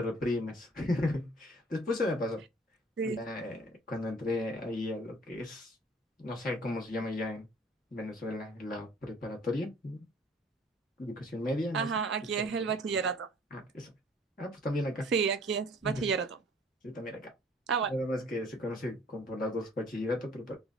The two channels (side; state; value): both; normal; correlation 0.54